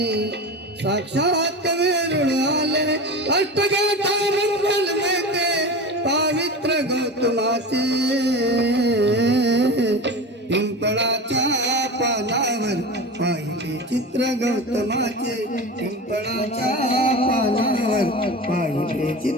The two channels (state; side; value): normal; both; correlation 0.29